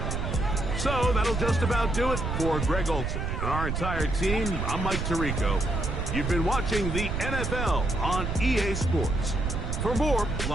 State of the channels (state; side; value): noise; right; rumble, 2 dB below the sound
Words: So that'll just about do it for Greg Olson and our entire team. I'm Mike Tirico. You've been watching the NFL on EA Sports. For more,